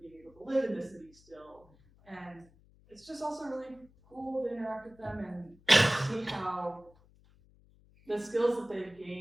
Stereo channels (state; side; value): noise; left; hum, 28 dB below the sound